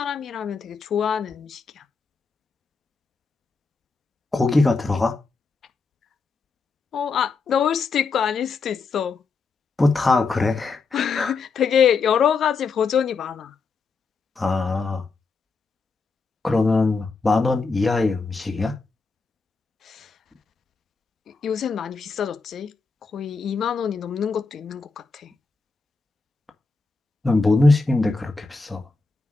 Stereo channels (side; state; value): right; quieter; 4.4 dB